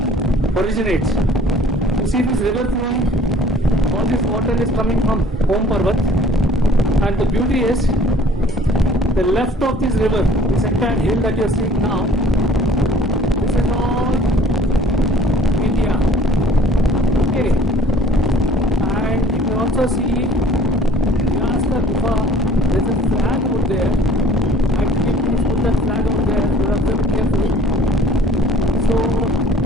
originates. You see this river flowing, all this water is coming from Om Parvat, and the beauty is the left of this river, this entire hill that you are seeing now, this is all India. Okay, and you can also see Vyasa Gufa. There is a flag over there. Actually, please put that flag over there. You have to be careful. So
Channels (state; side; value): normal; both; correlation 0.53